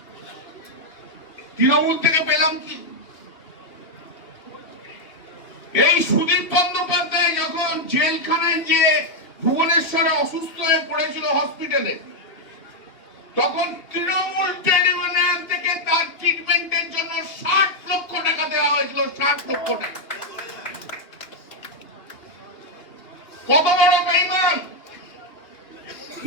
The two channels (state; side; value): late; right; 2.8 ms